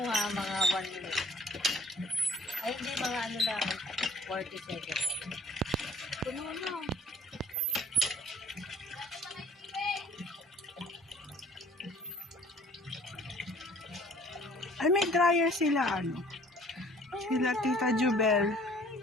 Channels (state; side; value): normal; both; correlation 0.54